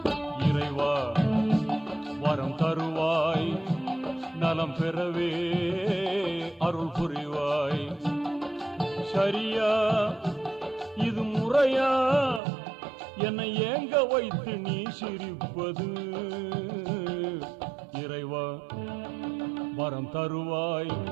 இறைவா வரம் தருவாய், நலம் பெறவே அருள் புரிவாய். சரியா இது முறையா, என்னை ஏங்க வைத்து நீ சிரிப்பது? இறைவா வரம் தருவாய்,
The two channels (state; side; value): drops out; left; at 12.4 s